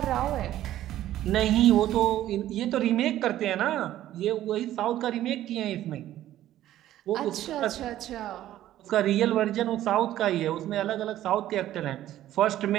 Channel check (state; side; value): quieter; left; 13.2 dB